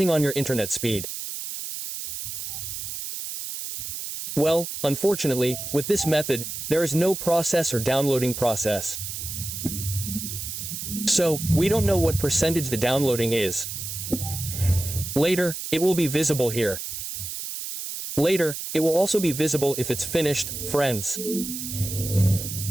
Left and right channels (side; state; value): right; noise; hiss, 6 dB below the sound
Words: on your internet speed. Well, unfortunately, with this method, there is no process or downloading process. So, we don't know what percentage the downloading is. Later, it will be visible here. Later, it will also be visible if it's finished, friends.